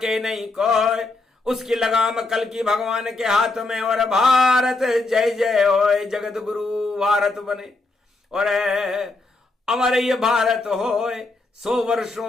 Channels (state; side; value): quieter; right; 3.3 dB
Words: नहीं कोई, उसकी लगाम कल्कि भगवान के हाथ में। और भारत जय जय होए, जगत गुरु भारत बने, और अमर ये भारत होए। 100